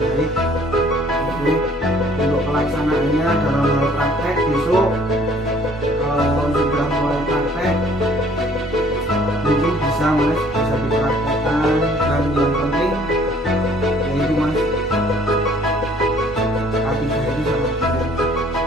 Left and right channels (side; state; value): both; normal; correlation 0.57